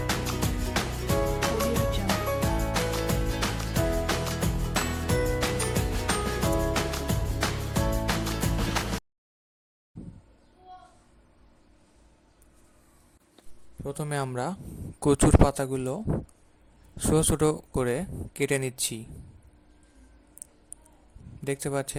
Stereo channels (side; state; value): both; identical; correlation 1.00